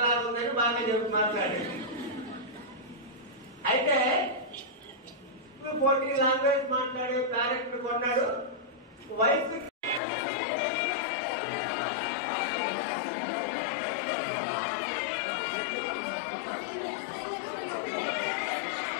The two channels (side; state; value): right; drops out; at 10.0 s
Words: ఉందని బాగా చెప్పి మాట్లాడాడు. అయితే 14 లాంగ్వేజ్ మాట్లాడే ప్యారెట్ ని కొన్నాడు. వయసు